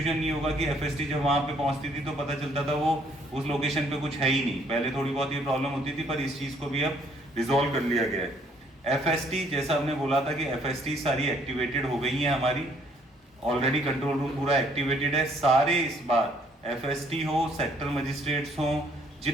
नहीं होगा कि FST जब वहां पे पहुंचती थी तो पता चलता था वो उस लोकेशन पे कुछ है ही नहीं। पहले थोड़ी बहुत ये प्रॉब्लम होती थी, पर इस चीज को भी अब रिजॉल्व कर लिया गया है। FST जैसा हमने बोला था कि FST सारी एक्टिवेटेड हो गई है हमारी, ऑलरेडी कंट्रोल रूम पूरा एक्टिवेटेड है। सारे इस बार FST हो, सेक्टर मजिस्ट्रेट्स हो,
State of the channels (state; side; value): normal; both; correlation 0.64